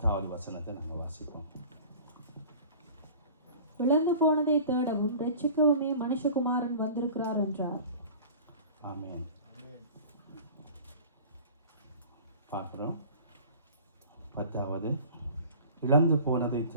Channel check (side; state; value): both; inverted; correlation -0.42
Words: வசனத்தை நாங்கள் வாசிப்போம். இழந்து போனதை தேடவும் ரட்சிக்கவுமே மனுஷகுமாரன் வந்திருக்கிறார் என்றார். ஆமென். பார்க்கிறோம். 10வது, இழந்து போனதை